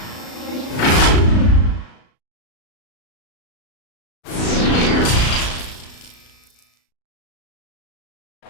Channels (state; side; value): late; right; 35 ms